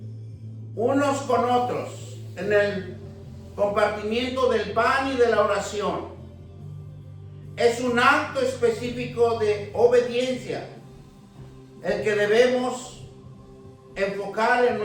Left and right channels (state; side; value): identical; both; correlation 1.00